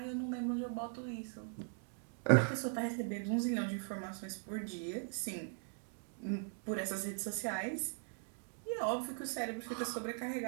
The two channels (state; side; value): silent; left; 51 dB below the other